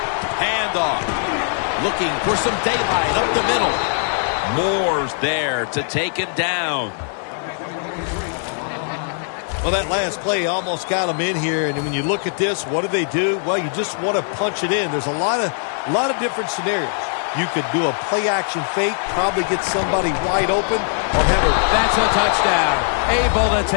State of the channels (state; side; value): silent; right; 65 dB below the other